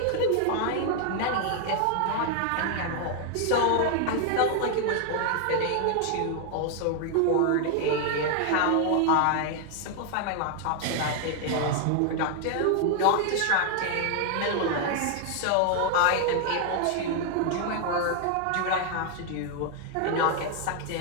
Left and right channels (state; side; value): different; both; correlation 0.00